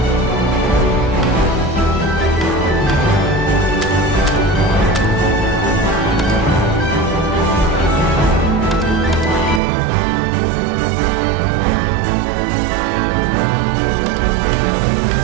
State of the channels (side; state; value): left; drops out; at 9.6 s